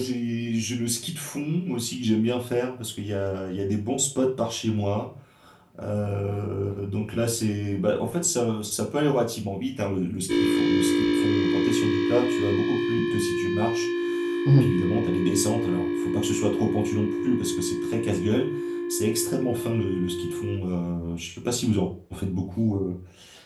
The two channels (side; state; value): both; identical; correlation 1.00